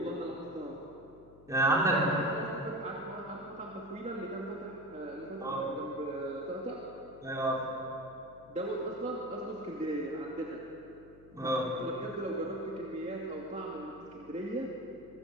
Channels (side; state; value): left; noise; hum, 22 dB below the sound